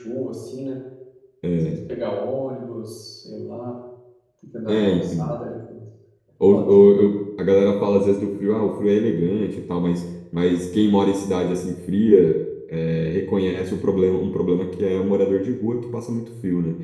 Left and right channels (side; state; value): both; identical; correlation 1.00